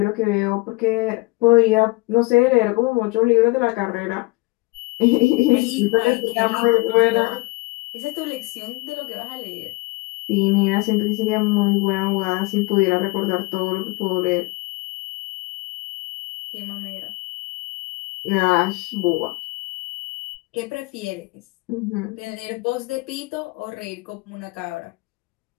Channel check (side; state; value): right; quieter; 24.1 dB